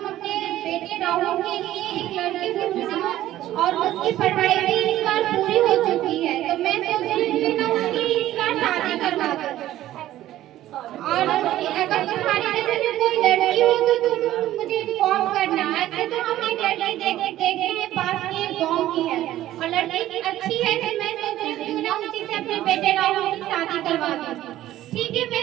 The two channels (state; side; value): quieter; left; 13.9 dB